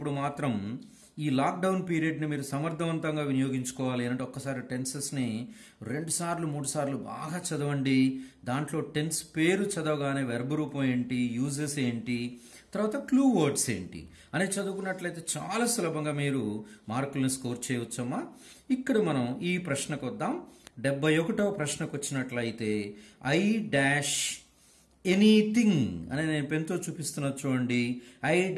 మాత్రం ఈ లాక్డౌన్ పీరియడ్ని మీరు సమర్థవంతంగా వినియోగించుకోవాలి అంటే ఒక్కసారి టెన్సెస్ని 2 సార్లు 3 సార్లు బాగా చదవండి. దాంట్లో టెన్స్ పేరు చదవగానే వెర్బ్ రూపం ఏంటి, యూజెస్ ఏంటి, తర్వాత క్లూ వర్డ్స్ ఏంటి అని చదువుకున్నట్లయితే చాలా సులభంగా మీరు మార్కులను స్కోర్ చేయవచ్చమ్మా. ఇక్కడ మనం ఈ ప్రశ్నకు వద్దాం. 71వ ప్రశ్నకు వచ్చినట్లయితే ఎనీథింగ్ అని నేను పెన్తో చూపిస్తున్నా చూడండి.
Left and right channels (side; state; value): both; identical; correlation 1.00